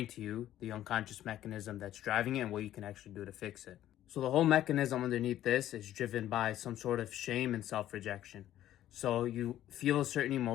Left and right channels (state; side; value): quieter; right; 12.7 dB